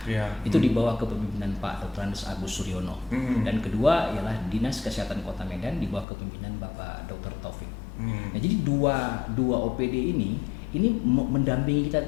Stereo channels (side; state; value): right; drops out; at 6.1 s